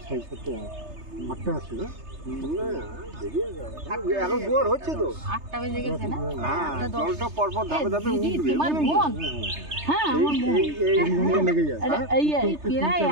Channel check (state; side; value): late; left; 3.3 ms